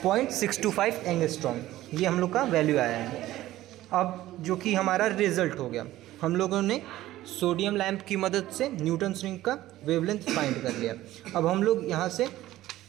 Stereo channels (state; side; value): quieter; left; 15.3 dB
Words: एंगस्ट्रॉम। ये हम लोग का वैल्यू आया है। अब जो कि हमारा रिजल्ट हो गया, हम लोगों ने सोडियम लैंप की मदद से न्यूटन्स रिंग का वेवलेंथ फाइंड कर लिया। अब हम लोग यहाँ से